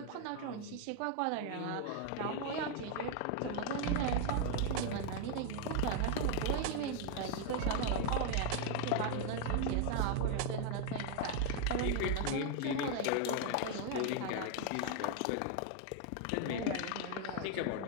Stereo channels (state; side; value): different; both; correlation 0.00